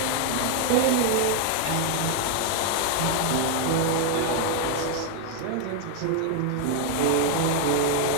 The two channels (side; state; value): both; different; correlation 0.00